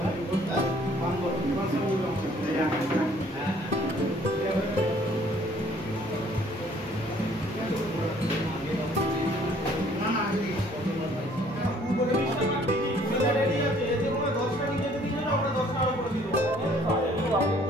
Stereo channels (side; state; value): both; normal; correlation 0.59